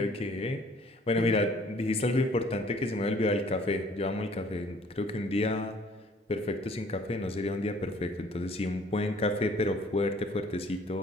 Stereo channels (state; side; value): normal; both; correlation 0.57